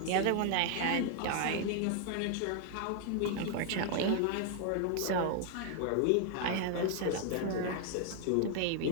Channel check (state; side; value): different; both; correlation 0.00